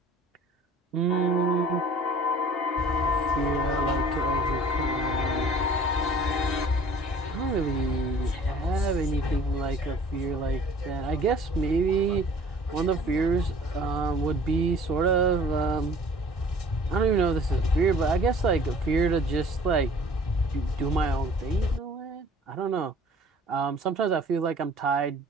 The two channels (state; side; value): normal; both; correlation 0.50